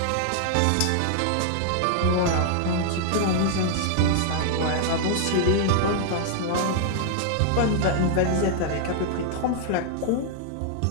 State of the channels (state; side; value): different; both; correlation 0.00